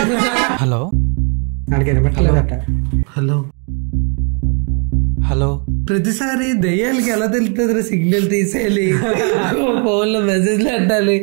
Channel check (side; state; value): left; quieter; 37.8 dB